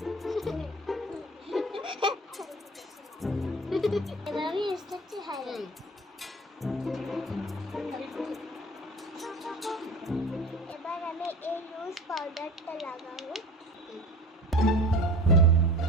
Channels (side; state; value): both; normal; correlation 0.40